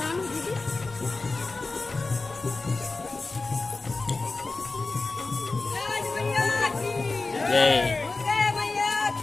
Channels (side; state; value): right; quieter; 3.6 dB